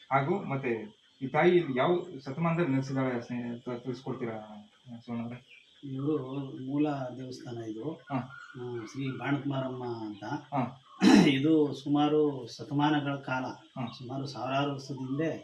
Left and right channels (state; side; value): identical; both; correlation 1.00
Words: ಹಾಗೂ ಮತ್ತೆ ಈ ತಾಯಿ ಯಾವ ಶತಮಾನದಲ್ಲಿ ನೆಲೆಸಿದಾಳೆ ತಿಳಿಸ್ಕೊಡ್ತೀರಾ ಶಿವಣ್ಣ? ಇವರು ಮೂಲ ದೇವಸ್ಥಾನ ಇದು ಶ್ರೀ ಬಾಣತುಮಾರಮ್ಮ ಅಂತ. ಇದು ಸುಮಾರು ಶತಮಾನಗಳ ಕಾಲ, ಸುಮಾರು ಸಾವಿರಾರು ವರ್ಷದಿಂದ